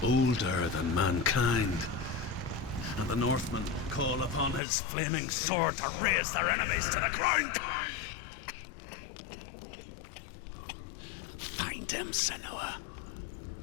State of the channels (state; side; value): drops out; right; at 4.6 s